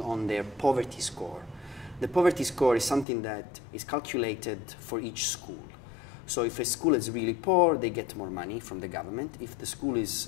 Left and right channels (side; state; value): right; drops out; at 3.1 s